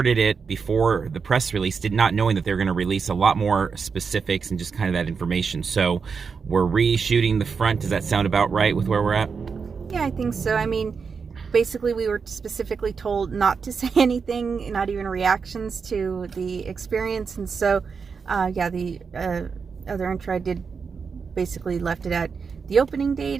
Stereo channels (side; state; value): left; quieter; 5.6 dB